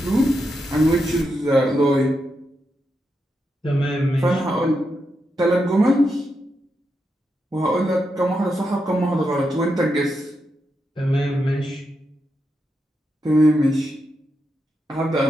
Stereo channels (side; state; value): both; normal; correlation 0.85